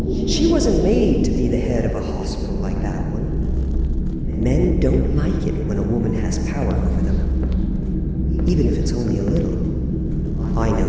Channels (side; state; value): both; identical; correlation 1.00